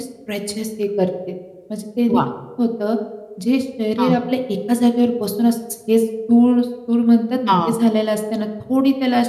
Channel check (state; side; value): identical; both; correlation 1.00